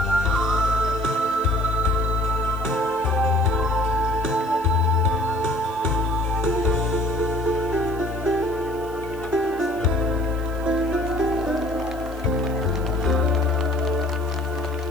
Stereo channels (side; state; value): right; noise; hiss, 22 dB below the sound